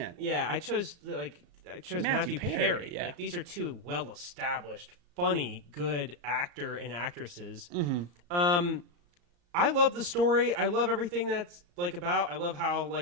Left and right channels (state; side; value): late; left; 34 ms